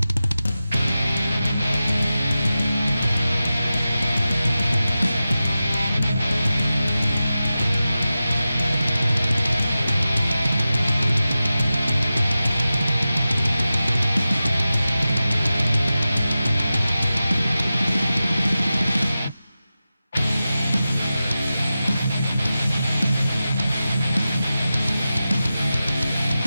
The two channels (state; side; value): inverted; both; correlation -0.94